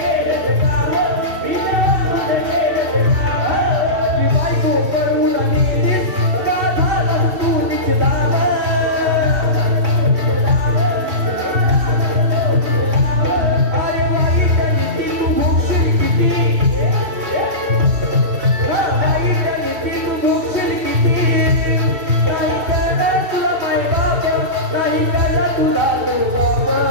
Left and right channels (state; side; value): late; left; 2.7 ms